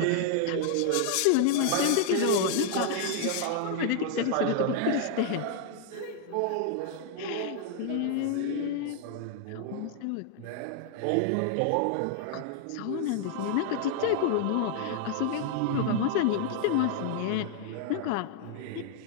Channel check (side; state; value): both; different; correlation -0.01